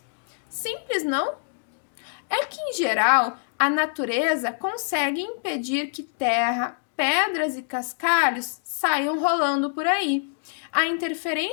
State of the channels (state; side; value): silent; right; digital silence